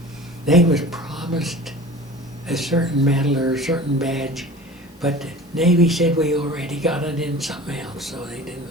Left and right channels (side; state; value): both; normal; correlation 0.40